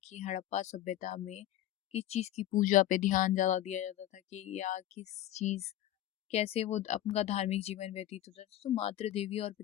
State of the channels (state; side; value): quieter; right; 12.9 dB